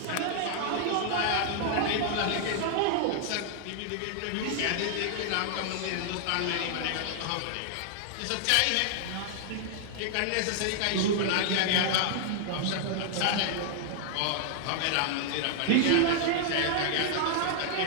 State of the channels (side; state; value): both; different; correlation -0.01